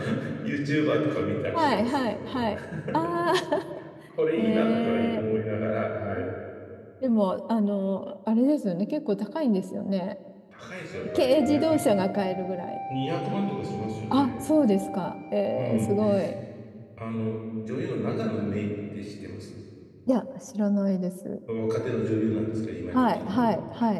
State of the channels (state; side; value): identical; both; correlation 1.00